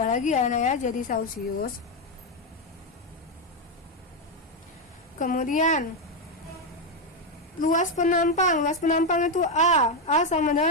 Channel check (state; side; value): normal; both; correlation 0.05